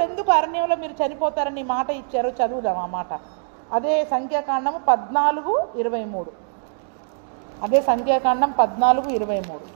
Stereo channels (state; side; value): silent; left; digital silence